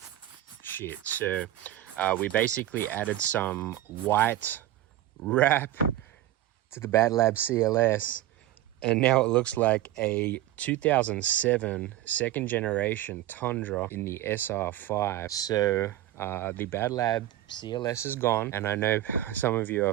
Shit. So we basically added some white wrap to the BADLAB CLS, and now it looks like a 2007 second generation Tundra in the SR5. So the BADLAB CLS is gone, and I know some of you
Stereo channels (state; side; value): quieter; left; 13.8 dB